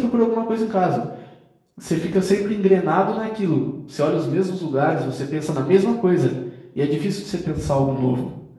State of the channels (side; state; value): both; identical; correlation 1.00